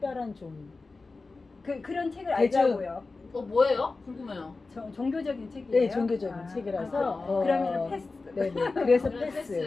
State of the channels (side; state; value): right; quieter; 3.8 dB